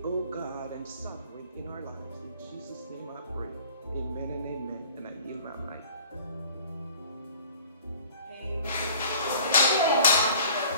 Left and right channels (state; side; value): inverted; both; correlation -0.50